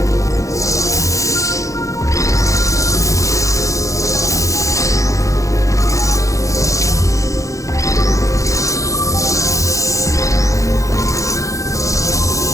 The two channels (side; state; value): right; late; 0.15 ms